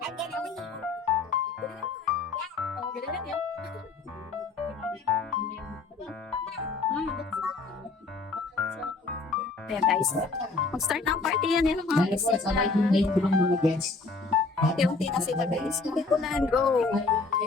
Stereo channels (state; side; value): quieter; right; 4.0 dB